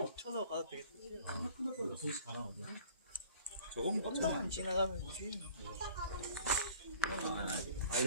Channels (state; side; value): inverted; both; correlation -0.49